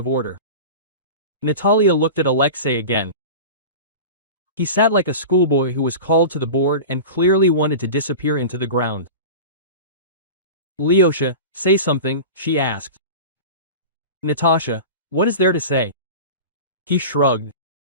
order. Natalia looked at Alexei again. He sat like a schoolboy who was called to the board and clearly wanted to disappear into the ground. Alyosha, say something, she asked. Natasha, what is there to say? He shrugged.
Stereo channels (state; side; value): inverted; both; correlation -0.31